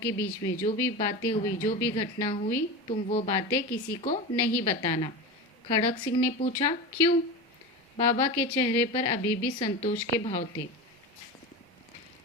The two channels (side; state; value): both; normal; correlation 0.25